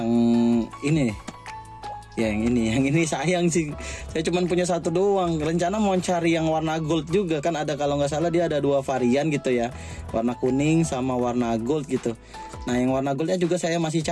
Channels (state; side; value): identical; both; correlation 1.00